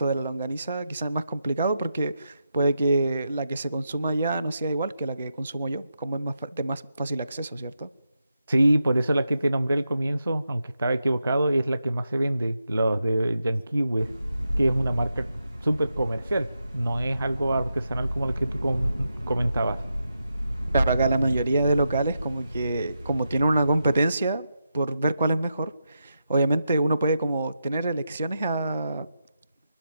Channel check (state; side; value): inverted; both; correlation -0.86